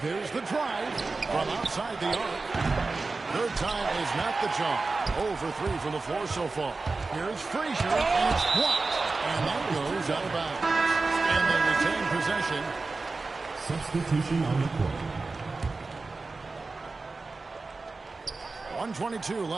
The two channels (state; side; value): quieter; left; 3.8 dB